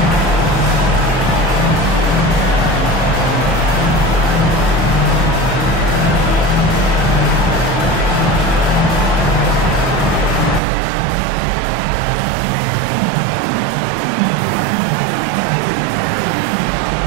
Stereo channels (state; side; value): drops out; left; at 10.6 s